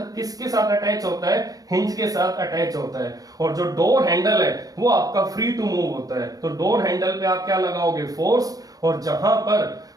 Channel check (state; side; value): late; left; 0.18 ms